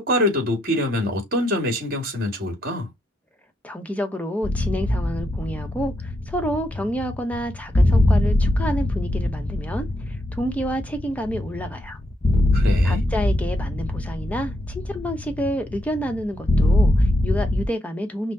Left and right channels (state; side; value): normal; both; correlation 0.79